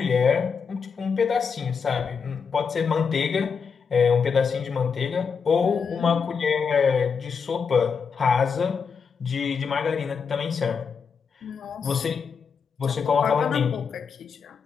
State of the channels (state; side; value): quieter; right; 6.0 dB